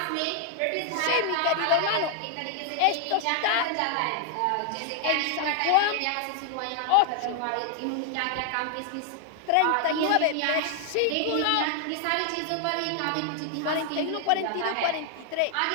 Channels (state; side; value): different; both; correlation 0.00